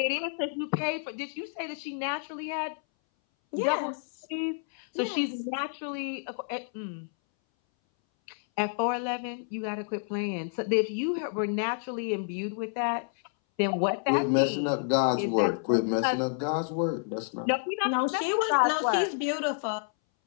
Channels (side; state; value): right; silent; 58 dB below the other